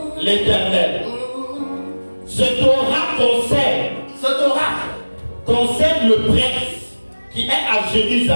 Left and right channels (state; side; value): inverted; both; correlation -1.00